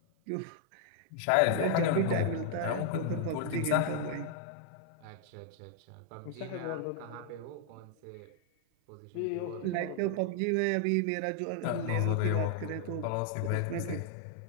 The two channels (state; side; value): different; both; correlation 0.00